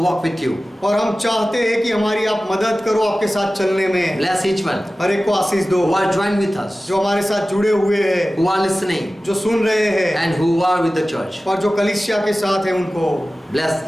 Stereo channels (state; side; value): normal; both; correlation 0.96